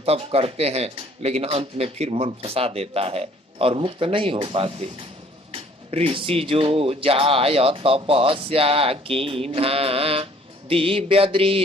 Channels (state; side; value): normal; both; correlation 0.58